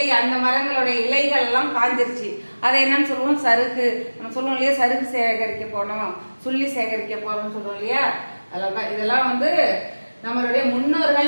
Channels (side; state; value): both; inverted; correlation -1.00